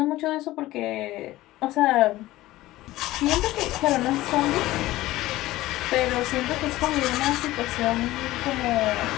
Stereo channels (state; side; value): quieter; right; 16.9 dB